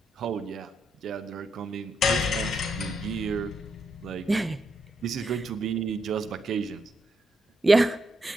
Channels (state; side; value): normal; both; correlation 0.80